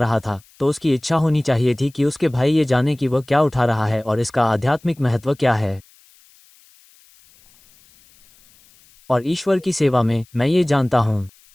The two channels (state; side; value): noise; left; hiss, 29 dB below the sound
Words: था, तो उसकी इच्छा होनी चाहिए थी कि उसके भाई ये जाने कि वह क्या उठा रहा है और इसका आध्यात्मिक महत्व क्या है। और ईश्वर की सेवा में, मैं ये जानता हूं।